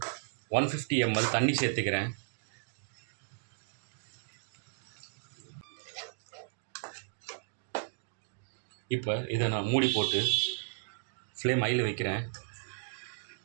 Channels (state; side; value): silent; left; digital silence